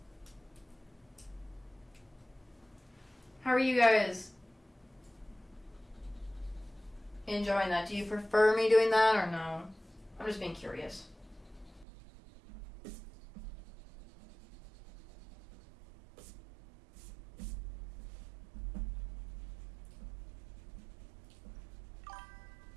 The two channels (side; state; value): left; drops out; at 11.9 s